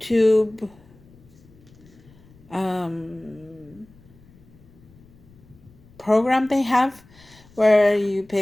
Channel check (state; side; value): noise; left; rumble, 26 dB below the sound